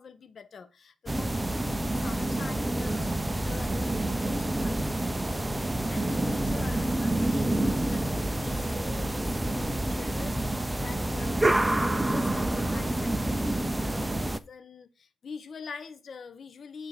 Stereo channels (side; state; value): both; normal; correlation 0.96